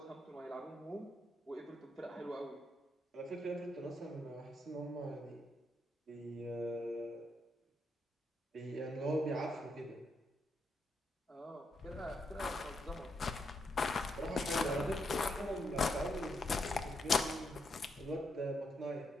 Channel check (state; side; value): normal; both; correlation 0.80